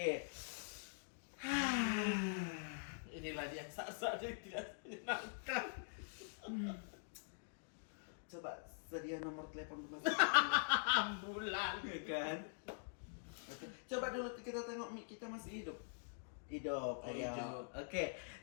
Inilah dia saat-saat yang tidak menyenangkan. Coba sedia nomor telepon rumah Ambulan. ya kan? Oke. Coba dulu kita tengok mic kita masih hidup. Hidup, Oh, ayo. hidup. Oke.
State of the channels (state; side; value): silent; right; digital silence